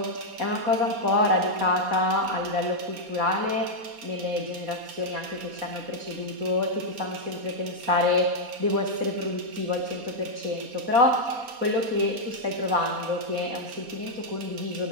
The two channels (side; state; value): left; late; 4.2 ms